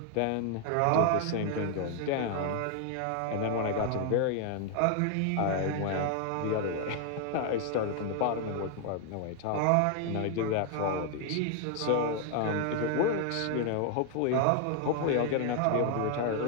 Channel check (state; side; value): different; both; correlation 0.00